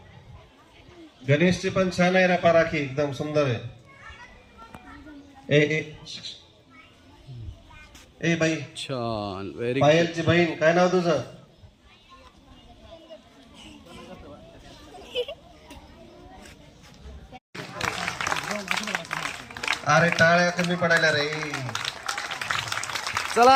गणेशची पण छान आहे ना राखी, एकदम सुंदर आहे. ए बाई छान, व्हेरी पायलची बहीण, काय नाव तुझं? अरे टाळ्या कमी पडायला रे.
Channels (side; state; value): both; identical; correlation 1.00